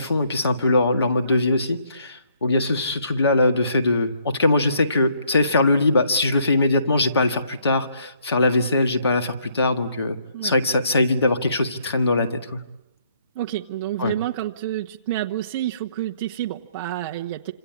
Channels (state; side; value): inverted; both; correlation -0.67